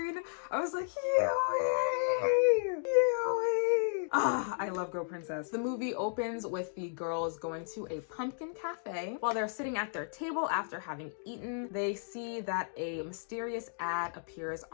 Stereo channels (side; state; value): right; silent; digital silence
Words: I was like, Yui! Yui! I love Go Princess. The movie opens with the girls going to a pumpkin cafe. While they're sitting at their table after having eaten, they see that a mysterious ad appears